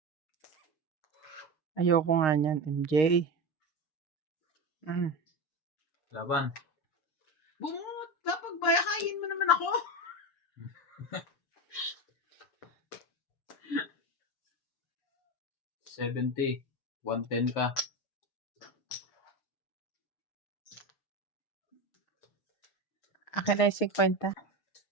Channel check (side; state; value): right; late; 6.5 ms